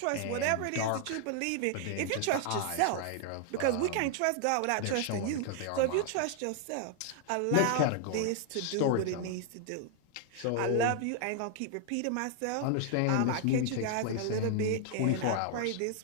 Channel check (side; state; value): both; different; correlation 0.00